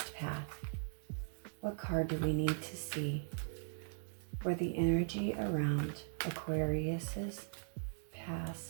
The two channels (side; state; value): left; silent; digital silence